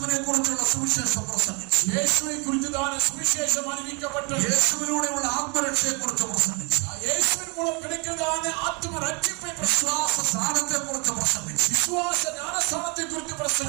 കുറിച്ചുള്ള സുവിശേഷം പ്രസംഗിച്ചു. യേശുവെ കുറിച്ച് സുവിശേഷം അറിയിക്കപ്പെട്ടു. യേശുവിലൂടെയുള്ള ആത്മരക്ഷയെ കുറിച്ച് പ്രസംഗിച്ചു. യേശുവിൻ മൂലം കിടക്കുന്നതാണ് ആത്മരക്ഷിപ്പെ. വിശ്വാസ സ്ഥാനത്തെ കുറിച്ച് പ്രസംഗിച്ചു. വിശ്വാസ ജ്ഞാനസ്ഥാനത്തെ കുറിച്ച്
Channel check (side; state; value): left; quieter; 32.2 dB